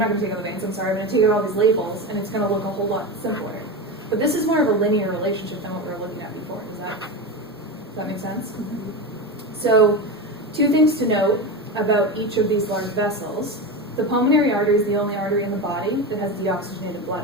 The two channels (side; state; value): both; normal; correlation 0.20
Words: going to take out the veins, I'm sorry, I'm going to take out all these labels, and it's going to look a whole lot simpler. But this is more of a linear relationship than what we were looking at before. Does that make sense? Mm-hmm. So, two things to note about each of these large vessels. The pulmonary artery is the only artery in the body that has deoxygenated blood